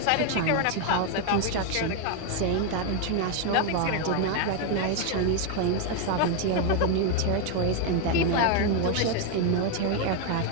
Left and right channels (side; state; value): both; different; correlation 0.01